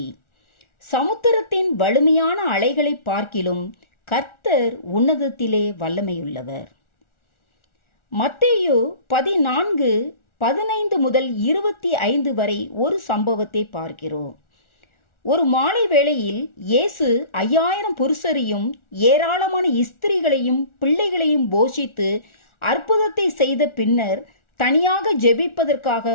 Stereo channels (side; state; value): right; late; 1.4 ms